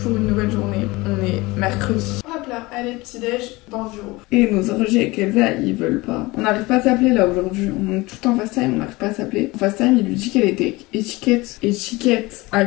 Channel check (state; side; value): quieter; right; 22.0 dB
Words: pour une nouvelle journée. On est mercredi. Hop là, allez, petit-déj dans le bureau. Et nos orgies avec Elsa, ils veulent pas. On n'arrive pas à s'appeler là aujourd'hui. On est tout en FaceTime, on n'arrive pas à s'appeler. En FaceTime, il lui dit qu'elle était étiquette. Étiquette. À